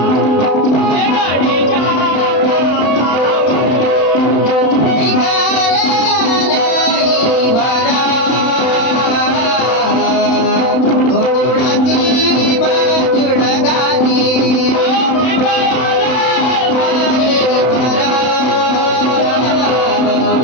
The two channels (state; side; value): late; right; 31 ms